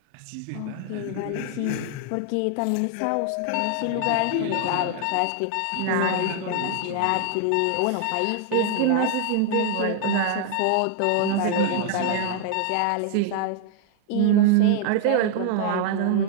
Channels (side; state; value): both; different; correlation 0.00